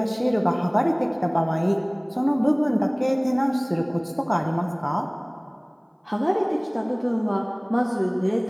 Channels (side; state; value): both; identical; correlation 1.00